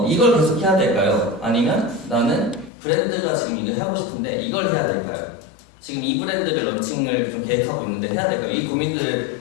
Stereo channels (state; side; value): drops out; right; at 2.7 s